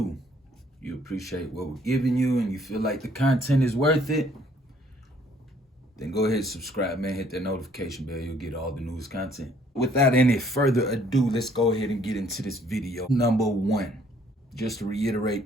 You appreciate what we're giving you and you feel like the content is worth it, then go ahead and subscribe, man. Hit that notification bell. You'll get all the newest content. Without any further ado, let's go ahead and get into this video. Number 1, just to reiterate,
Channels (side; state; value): both; normal; correlation 0.62